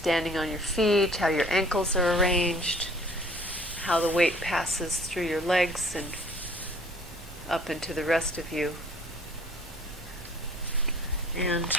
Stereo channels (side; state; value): both; normal; correlation 0.54